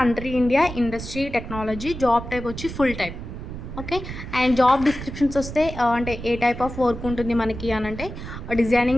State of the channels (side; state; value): right; noise; rumble, 9 dB below the sound